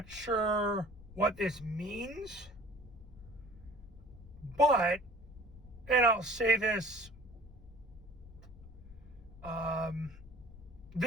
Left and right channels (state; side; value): noise; left; rumble, 18 dB below the sound